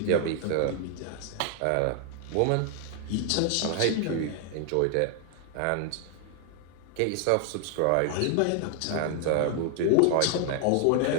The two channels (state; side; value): different; both; correlation 0.00